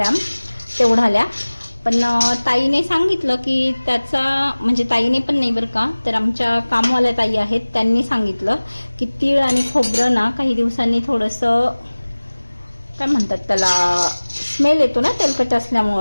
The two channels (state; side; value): inverted; both; correlation -1.00